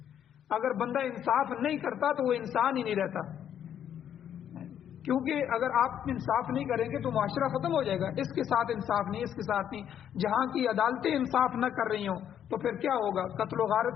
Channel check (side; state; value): right; quieter; 9.6 dB